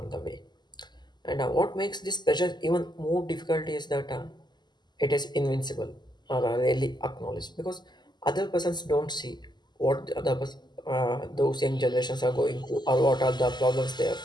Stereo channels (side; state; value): right; late; 0.21 ms